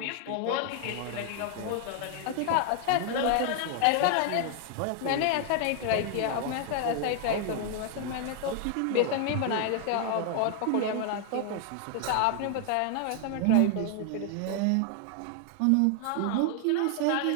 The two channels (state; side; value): different; both; correlation 0.00